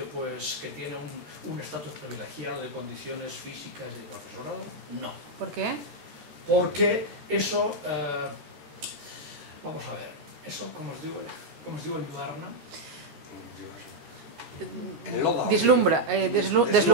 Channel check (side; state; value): left; late; 13 ms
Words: pues, que tiene un estatus privilegiado de condiciones físicas y de profesorado. No. ¿Por qué? Porque eso, vamos a ver, eso, como os digo en Ibarna, deslumbra